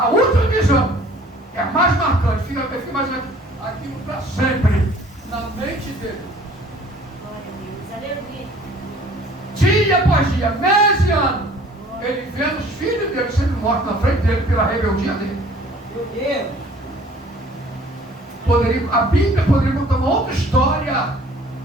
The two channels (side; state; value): both; normal; correlation 0.52